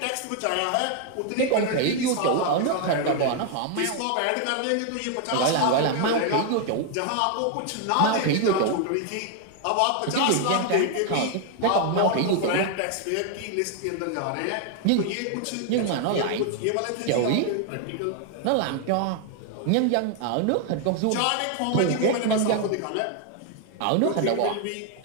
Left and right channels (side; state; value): both; different; correlation 0.00